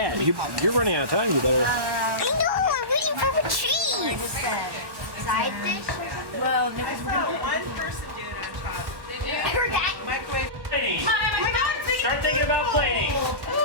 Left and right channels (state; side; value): late; left; 1.1 ms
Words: You're running out of time. You better. I know. I'm waiting for the cheese. Side dish. Well, because we're gonna one person doing on top. Heard that. Microwave. Plating. Start thinking about plating.